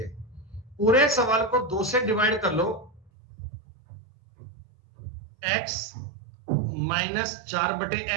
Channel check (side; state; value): left; drops out; at 3.1 s